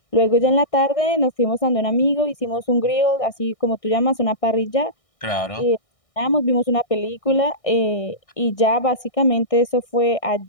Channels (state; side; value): late; right; 1.6 ms